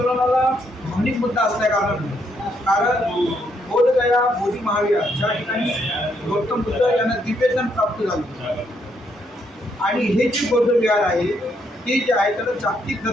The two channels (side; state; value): both; normal; correlation 0.74